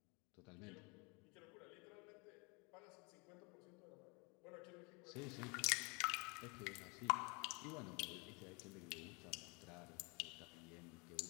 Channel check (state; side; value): quieter; right; 30.5 dB